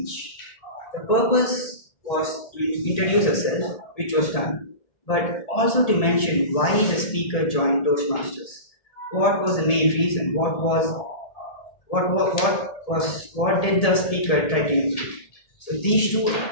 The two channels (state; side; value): late; right; 1.8 ms